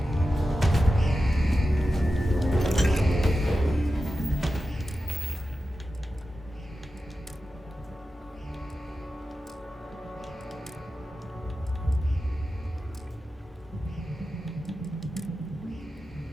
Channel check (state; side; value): normal; both; correlation 0.92